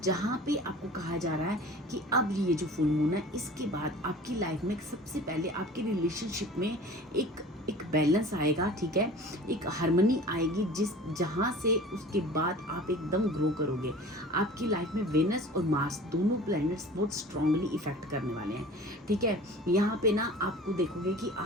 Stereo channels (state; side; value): normal; both; correlation 0.42